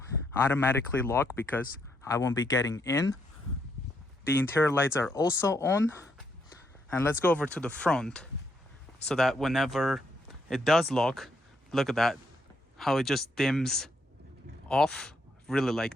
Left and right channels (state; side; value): normal; both; correlation 0.75